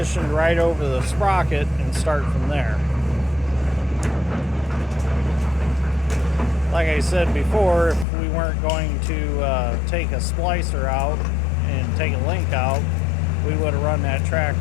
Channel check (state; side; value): drops out; right; at 8.1 s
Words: right over the sprocket and start from there. Like I said before, if we weren't going to take a splicer out and take a link out, we would have run that track